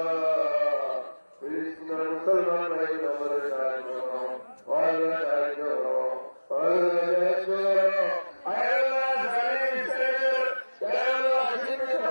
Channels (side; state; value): both; inverted; correlation -1.00